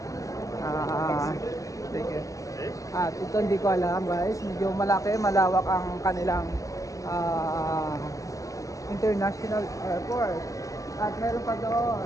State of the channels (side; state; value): right; late; 0.16 ms